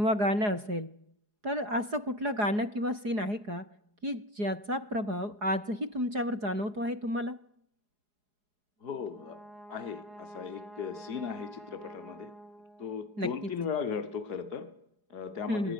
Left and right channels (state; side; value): late; left; 4.8 ms